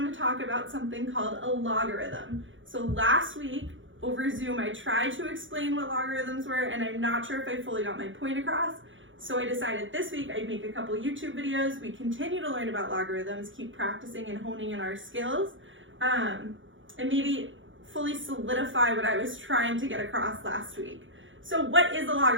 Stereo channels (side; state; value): left; late; 0.56 ms